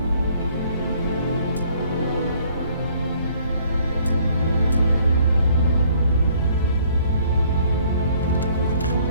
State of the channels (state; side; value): inverted; both; correlation -0.61